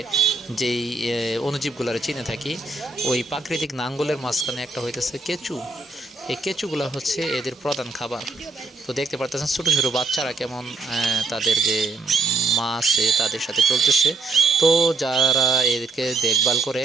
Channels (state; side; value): quieter; left; 3.6 dB